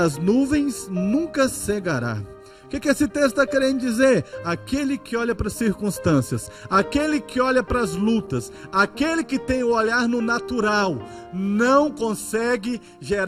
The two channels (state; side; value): identical; both; correlation 1.00